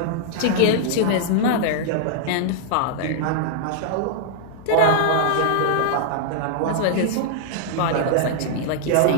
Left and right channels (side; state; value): both; different; correlation -0.01